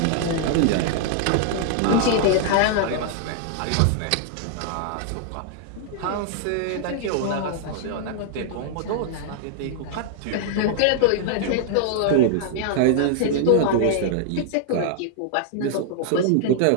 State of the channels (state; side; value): different; both; correlation -0.01